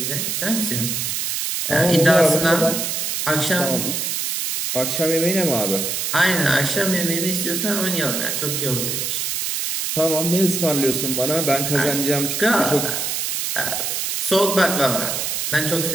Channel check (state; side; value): noise; right; hiss, 1 dB below the sound